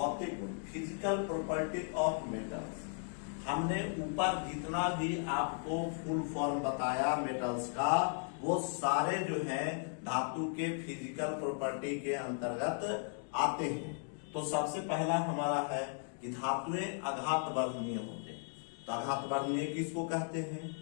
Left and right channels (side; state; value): right; silent; 54 dB below the other